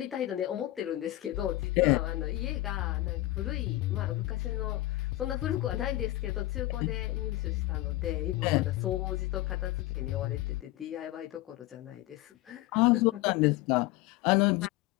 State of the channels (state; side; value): quieter; right; 17.0 dB